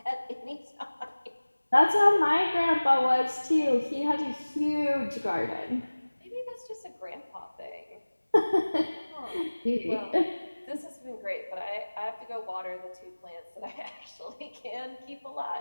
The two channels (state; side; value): inverted; both; correlation -1.00